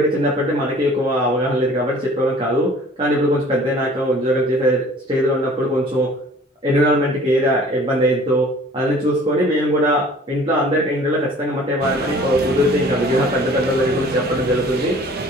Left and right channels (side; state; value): both; normal; correlation 0.50